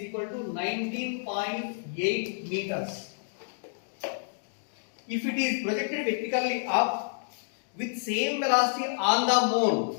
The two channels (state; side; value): silent; right; digital silence